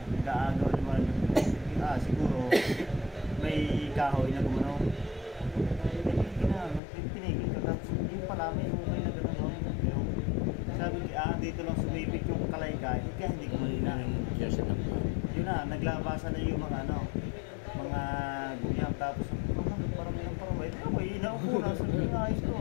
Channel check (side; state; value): right; drops out; at 6.8 s